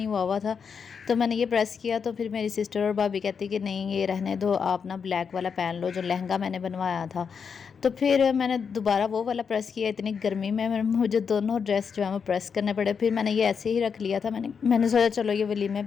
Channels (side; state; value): right; quieter; 6.3 dB